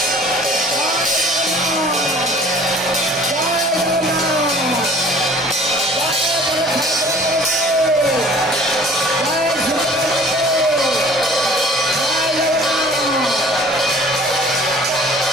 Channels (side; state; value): both; normal; correlation 0.50